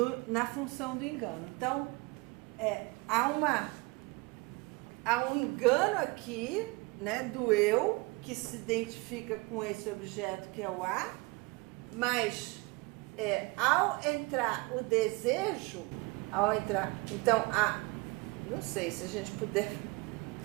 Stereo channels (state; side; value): quieter; left; 24.7 dB